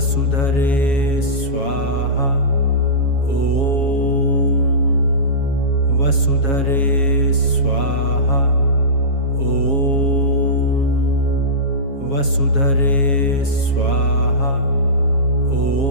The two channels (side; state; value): right; late; 7.3 ms